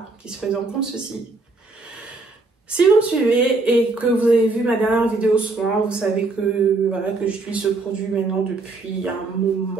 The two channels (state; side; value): quieter; left; 3.5 dB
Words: qui se présente comme ceci. Si vous me suivez et que vous avez vu ma dernière vidéo soin, vous savez que voilà, que j'utilise ce produit maintenant depuis un